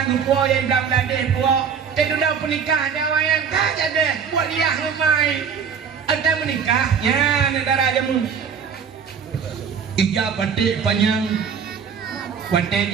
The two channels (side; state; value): left; quieter; 6.9 dB